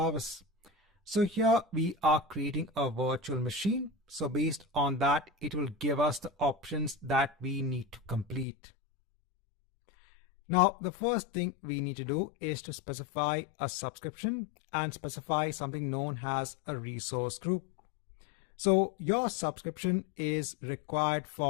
So here we are creating a virtual machine. So based on that, it will give us the options that we need to complete. Now, the first thing we need to do is to specify a subscription and specify something known as a resource group. So your subscription is required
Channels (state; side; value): drops out; right; at 8.5 s